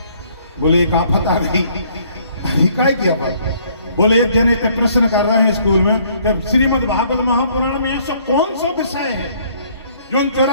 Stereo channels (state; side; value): inverted; both; correlation -0.62